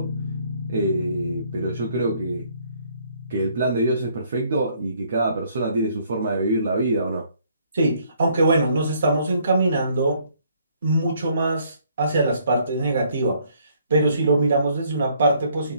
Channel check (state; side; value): inverted; both; correlation -0.66